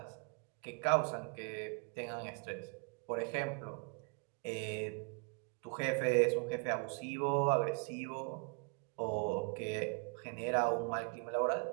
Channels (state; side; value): quieter; left; 35.7 dB